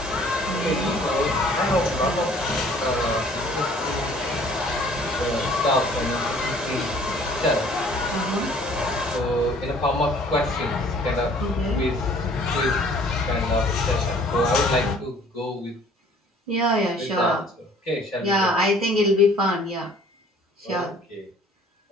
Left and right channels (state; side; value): normal; both; correlation 0.55